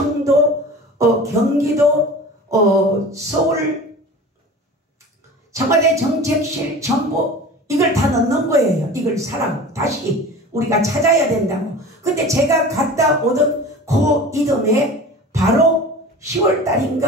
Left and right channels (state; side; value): normal; both; correlation 0.37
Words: 경기도, 서울, 청와대 정책실 전부 이걸 다 넣는 거예요. 이걸 사라고. 다시 우리가 찾아야 된다고. 근데 제가 갔다 오던 그 이듬해 바로